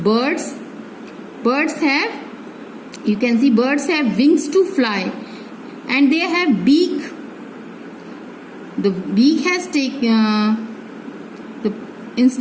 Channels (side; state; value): both; identical; correlation 1.00